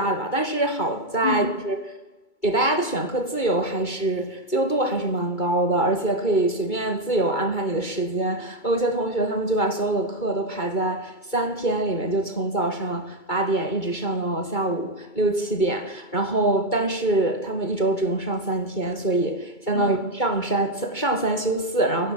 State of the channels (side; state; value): right; late; 2.2 ms